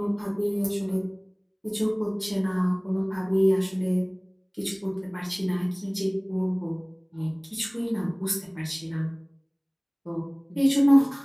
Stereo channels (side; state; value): both; identical; correlation 1.00